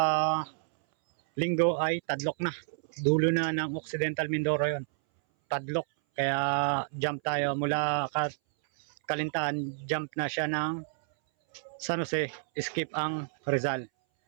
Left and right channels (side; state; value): left; silent; 58 dB below the other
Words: linggo ay Tadlok na. Dulo na ng Occidental Mindoro yon. Tadlok. Kaya jump tayo mula Kalintahan, jump na siya ng San Jose, skip ang Rizal.